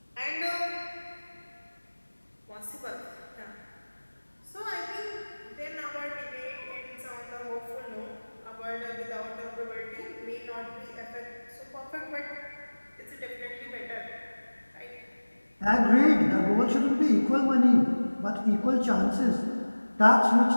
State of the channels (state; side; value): inverted; both; correlation -1.00